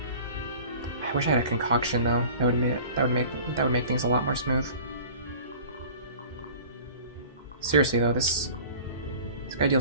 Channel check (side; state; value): both; inverted; correlation -0.43